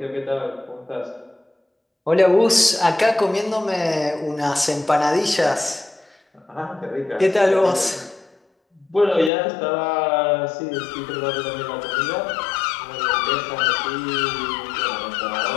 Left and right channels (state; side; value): drops out; right; at 9.3 s